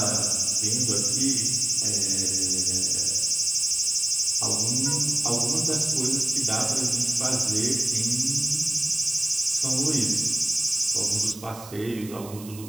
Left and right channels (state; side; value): noise; right; hiss, 17 dB below the sound